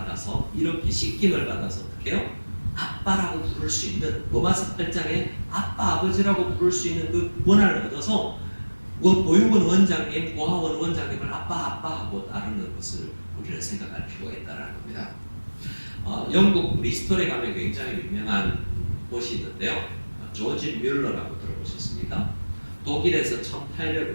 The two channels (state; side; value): inverted; both; correlation -1.00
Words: 이렇게 씻김을 받아서 어떻게 해요? 아빠라고 부를 수 있는 로마서 8장에 아빠 아버지라고 부를 수 있는 그 권한을 얻어서 보육원 원장님, 고아원 원장님을 아빠 하고 따르는 것을 우리는 생각할 필요가 있다는 겁니다. 영국 리스톨에 가면 굉장히 유명한 곳이 있는데요. 조지 뮬러라고 들어보셨습니까? 독일에서